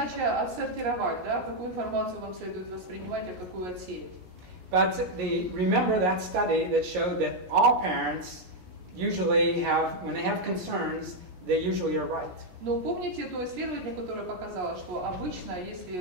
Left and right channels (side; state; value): left; late; 16 ms